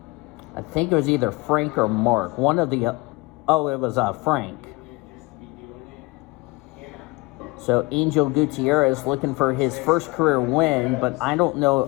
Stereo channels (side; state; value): right; quieter; 24.0 dB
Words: I think it was either Frank or Mark. One of the... oh, it was Frank. So Angel Gutierrez looking for his first career win, but I don't